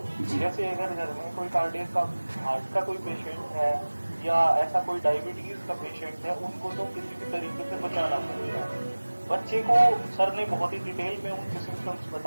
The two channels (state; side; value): inverted; both; correlation -1.00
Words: जैसे अगर घर में कोई कार्डियक का हार्ट का कोई पेशेंट है या ऐसा कोई डायबिटीज का पेशेंट है, उनको तो किसी भी तरीके से बचाना पड़ेगा। बच्चे को सर ने बहुत ही डिटेल में उनके सिम्टम्स